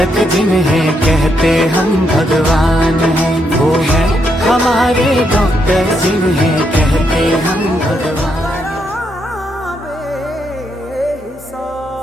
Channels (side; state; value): both; normal; correlation 0.78